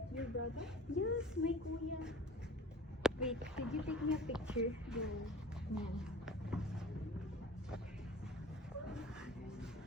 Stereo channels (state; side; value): normal; both; correlation 0.42